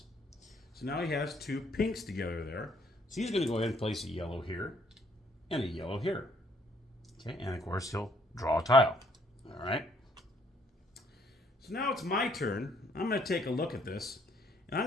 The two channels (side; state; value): both; normal; correlation 0.65